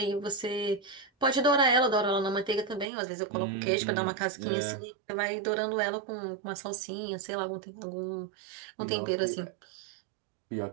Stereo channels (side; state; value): left; drops out; at 2.9 s